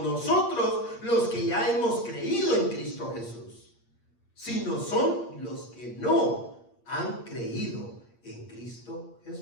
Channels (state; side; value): late; right; 8.6 ms